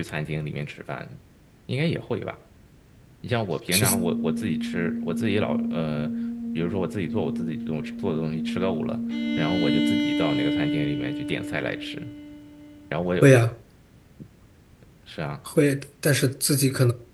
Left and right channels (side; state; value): both; identical; correlation 1.00